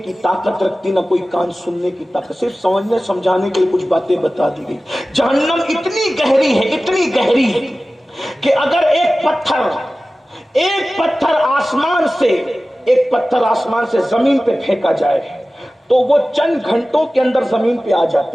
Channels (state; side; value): normal; both; correlation 0.96